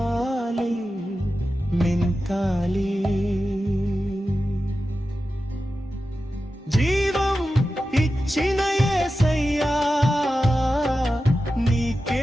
నింపాలి జీవం ఇచ్చిన యేసయ్యా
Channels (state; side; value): normal; both; correlation 0.92